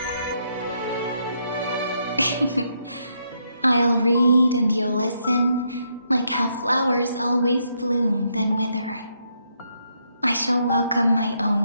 I'll read and you'll listen, like how flowers always bloom then wither. I shall welcome my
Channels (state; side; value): inverted; both; correlation -0.77